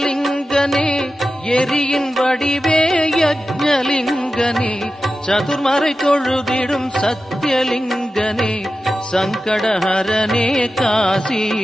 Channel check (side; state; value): both; normal; correlation 0.93